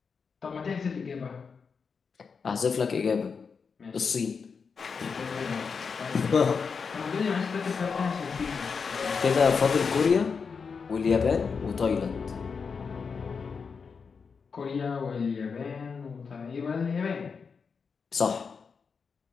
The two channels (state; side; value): quieter; right; 5.5 dB